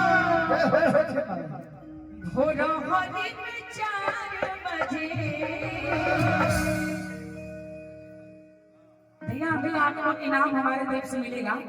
भोर होने में 4 बजे। भैया अभी आपको इनाम हमारे तरफ से मिलेगा।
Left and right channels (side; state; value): both; identical; correlation 1.00